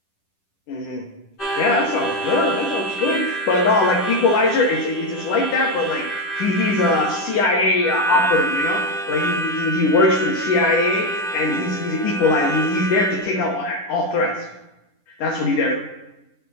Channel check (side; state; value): right; late; 10 ms